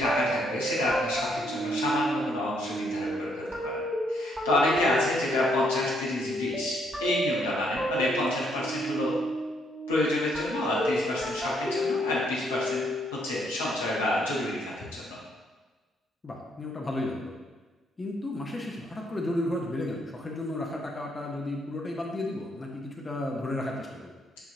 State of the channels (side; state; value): both; normal; correlation 0.72